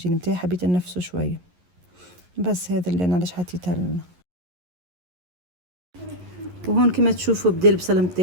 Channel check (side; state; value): left; late; 11 ms